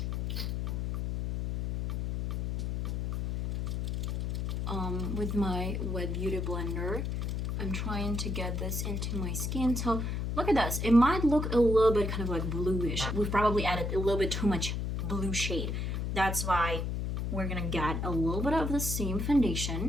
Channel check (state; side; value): noise; left; hum, 1 dB below the sound